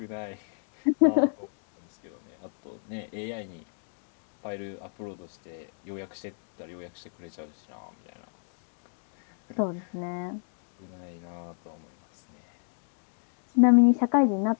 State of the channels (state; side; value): silent; right; digital silence